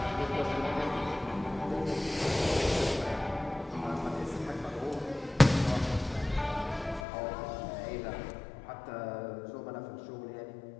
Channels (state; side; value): drops out; right; at 7.1 s